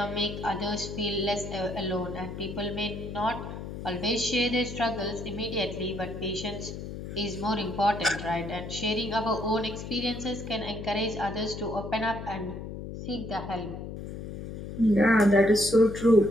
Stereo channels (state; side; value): noise; left; hum, 8 dB below the sound